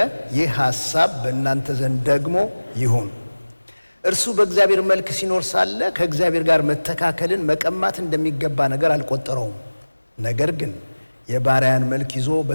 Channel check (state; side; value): inverted; both; correlation -1.00